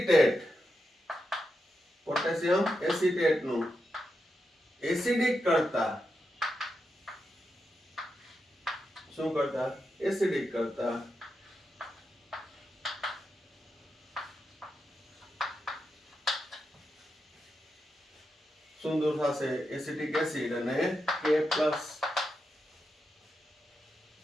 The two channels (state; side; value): normal; both; correlation 0.87